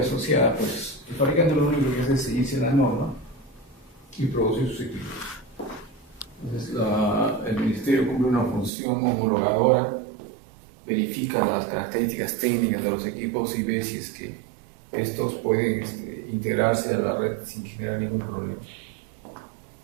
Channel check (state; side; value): drops out; left; at 8.7 s